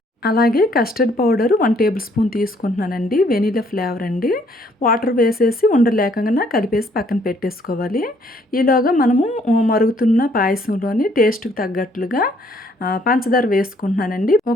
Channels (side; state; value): both; normal; correlation 0.65